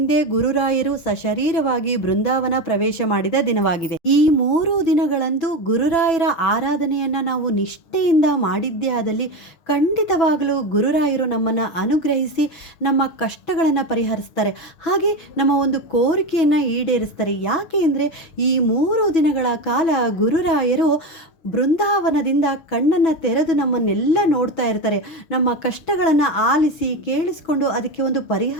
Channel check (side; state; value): right; late; 6.1 ms